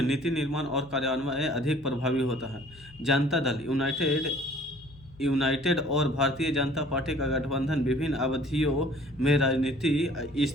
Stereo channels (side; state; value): left; noise; hum, 22 dB below the sound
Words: नीति निर्माण और कार्यान्वयन अधिक प्रभावी होता है। जनता दल यूनाइटेड और भारतीय जनता पार्टी का गठबंधन विभिन्न अवधियों में राजनीतिक